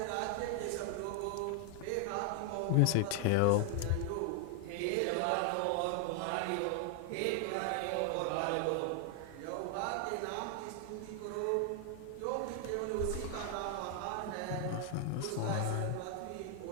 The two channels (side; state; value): both; different; correlation 0.00